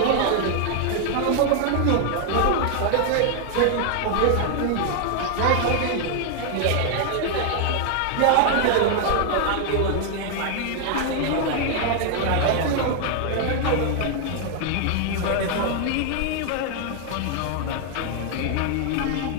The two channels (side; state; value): both; different; correlation 0.00